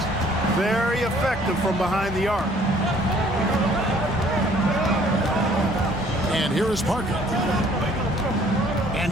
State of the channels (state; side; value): normal; both; correlation 0.58